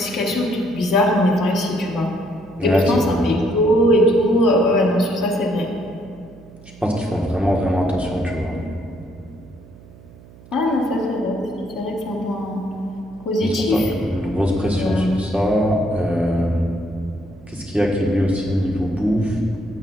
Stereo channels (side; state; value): right; noise; hum, 22 dB below the sound